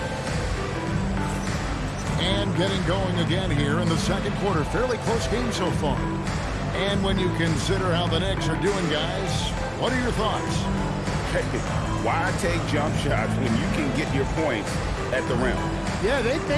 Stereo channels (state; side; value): identical; both; correlation 1.00